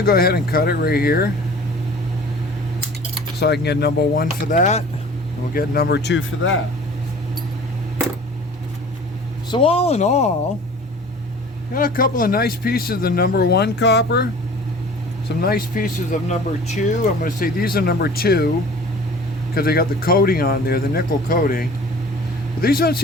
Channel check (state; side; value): normal; both; correlation 0.45